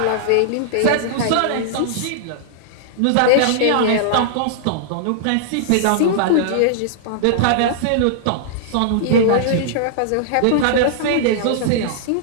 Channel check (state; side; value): different; both; correlation -0.01